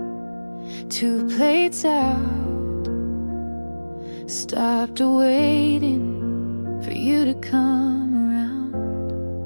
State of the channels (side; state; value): both; inverted; correlation -1.00